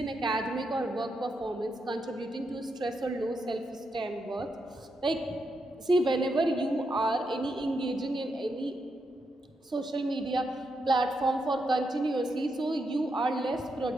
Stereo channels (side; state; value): both; normal; correlation 0.83